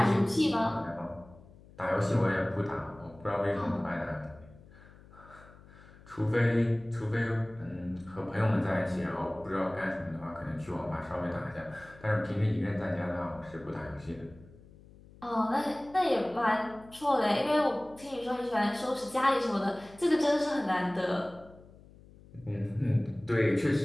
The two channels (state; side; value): noise; left; hum, 22 dB below the sound